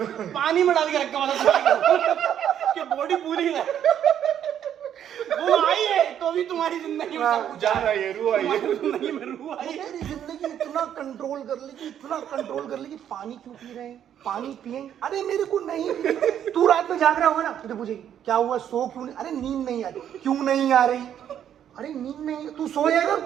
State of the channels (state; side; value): quieter; left; 9.8 dB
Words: पानी में डाल के रखा हुआ था कि बॉडी पूरी है। वो आई है तो भी तुम्हारी जिंदगी में सब कुछ जा रहा है, रूह आई है। जिंदगी में रूह आई है। तेरी जिंदगी इतना कंट्रोल कर ली कि पानी क्यों पी रहे हैं, पानी पिएंगे, अरे मेरे को नहीं पी। तू रात में जाग रहा होगा ना, तुझे पूछेगी क्या हुआ, सो क्यों नहीं, अरे नींद नहीं आ रही, क्यों नहीं आ रही, अरे नींद नहीं, तू सो जाएगा,